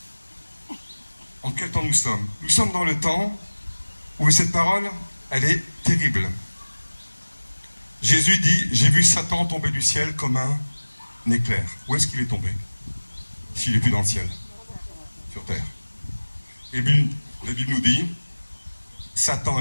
En quel temps nous sommes? Nous sommes dans le temps où cette parole elle est terrible. Jésus dit, j'ai vu Satan tomber du ciel comme un éclair. Où est-ce qu'il est tombé? S'il n'est plus dans le ciel, sur terre. Et bien, la Bible nous dit, Satan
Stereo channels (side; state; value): both; inverted; correlation -1.00